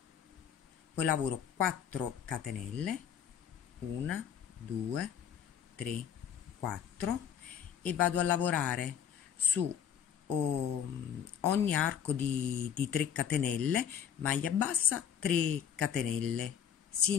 poi lavoro 4 catenelle, 1 2 3 4 e vado a lavorare su ogni arco di 3 catenelle, maglia bassa, 3 catenelle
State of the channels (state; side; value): quieter; right; 8.5 dB